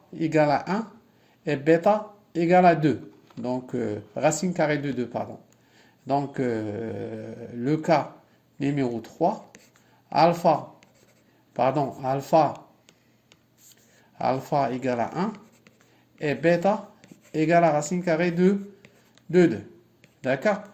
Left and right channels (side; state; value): both; identical; correlation 1.00